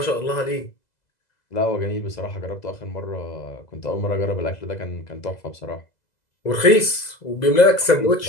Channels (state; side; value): late; right; 2.0 ms